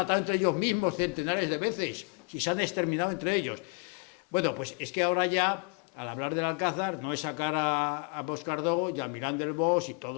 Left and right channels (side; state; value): right; quieter; 36.5 dB